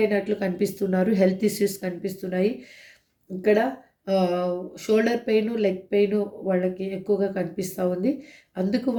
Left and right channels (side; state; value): both; identical; correlation 1.00